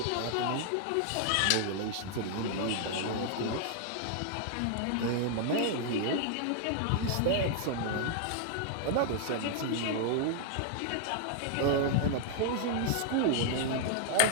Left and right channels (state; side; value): different; both; correlation 0.00